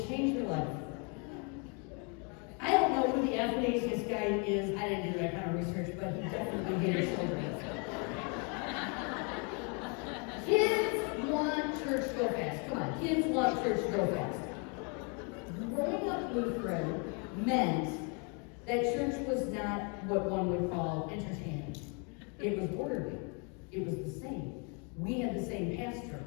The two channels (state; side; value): quieter; right; 35.7 dB